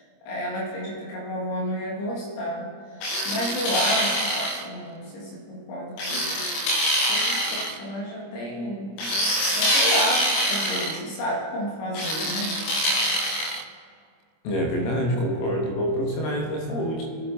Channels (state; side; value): late; right; 25 ms